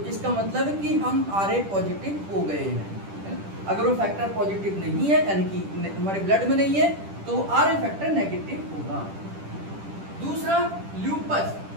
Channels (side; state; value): left; late; 10 ms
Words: इसका मतलब है कि हम आरए पॉजिटिव हो गए हैं। अगर वो फैक्टर पॉजिटिव नहीं है, यानी कि हमारे ब्लड में नहीं है, तो आरए फैक्टर नेगेटिव होगा। दूसरा,